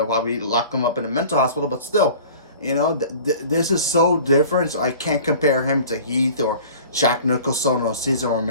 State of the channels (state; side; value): inverted; both; correlation -0.43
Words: lock him up in a mental hospital, but still, this is so different. So I can't compare him to Heath or Jack Nicholson or Cesar